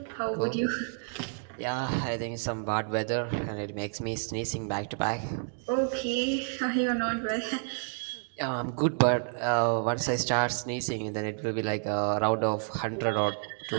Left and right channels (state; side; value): silent; left; digital silence